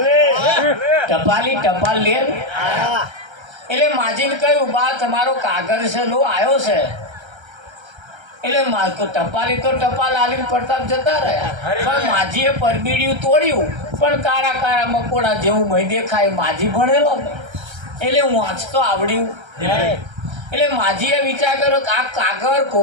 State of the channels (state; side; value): late; left; 1.3 ms